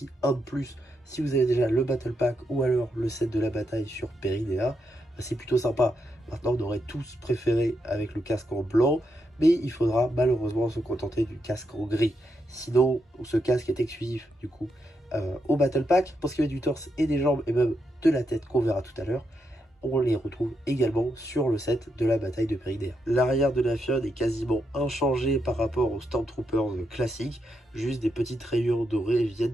un de plus. Si vous avez déjà le Battle Pack ou alors le set de la bataille sur Peridea, c'est plutôt sympa. Maintenant, on aurait tous préféré avec le casque en blanc, mais il faudra malheureusement se contenter du casque en gris. Sinon, ce casque est exclusif du coup au Battle Pack. Pour ce qui est du torse et des jambes et même de la tête qu'on verra tout à l'heure, on les retrouve également sur le set de la bataille de Peridea. L'arrière de la figurine est quasiment inchangé par rapport aux Stormtroopers classiques, juste des petites rayures dorées viennent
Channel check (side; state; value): both; normal; correlation 0.82